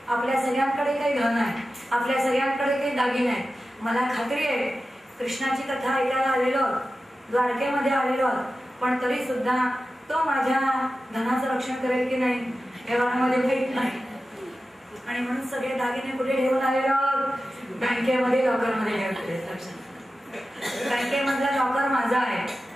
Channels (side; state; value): both; normal; correlation 0.93